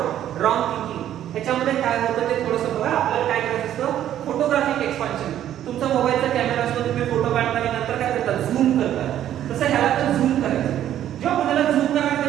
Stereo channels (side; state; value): left; quieter; 11.4 dB